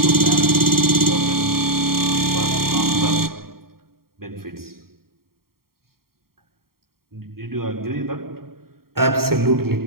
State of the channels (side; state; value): left; late; 0.93 ms